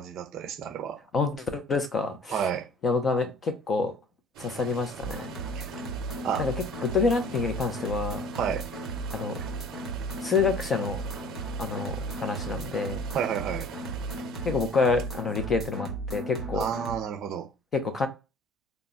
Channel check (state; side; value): normal; both; correlation 0.48